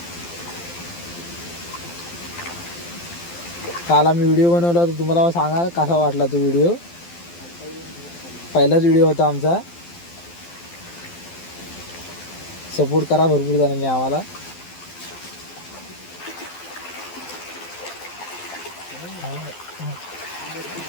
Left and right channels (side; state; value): right; late; 12 ms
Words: काल आम्ही व्हिडिओ बनवला होता. तुम्हाला सांगा कसा वाटला तो व्हिडिओ. पहिलाच व्हिडिओ होता आमचा. सपोर्ट करा भरपूर जणांनी आम्हाला.